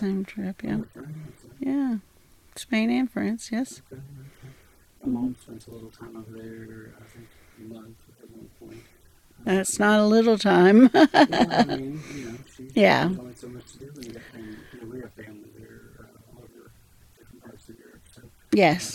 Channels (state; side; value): identical; both; correlation 1.00